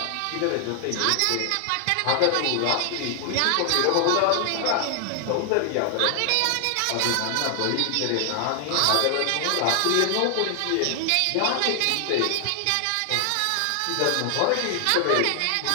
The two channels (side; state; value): both; different; correlation 0.00